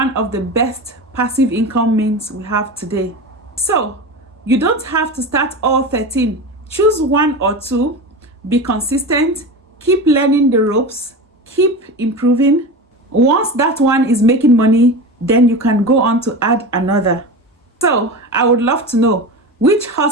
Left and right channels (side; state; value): both; normal; correlation 0.26